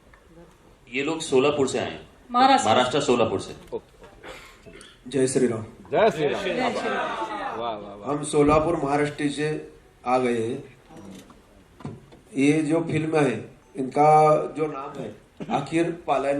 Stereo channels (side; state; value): both; identical; correlation 1.00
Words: ये लोग सोलापुर से आए हैं, महाराष्ट्र सोलापुर से। जय श्री राम। जय श्री राम। वाह वाह वाह। हम सोलापुर महाराष्ट्र से आ गए हैं। ये जो फिल्म है इनका जो नाम है आखिर